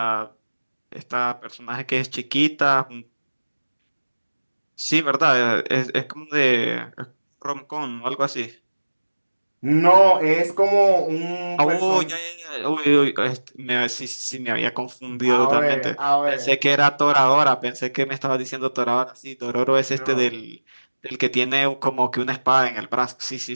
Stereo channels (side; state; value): both; inverted; correlation -1.00